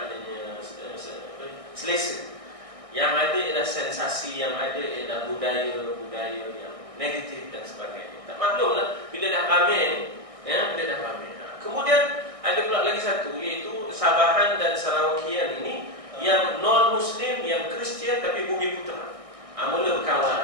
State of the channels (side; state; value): left; late; 1.6 ms